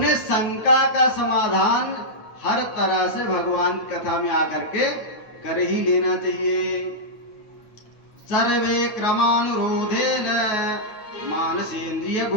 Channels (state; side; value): late; right; 9.3 ms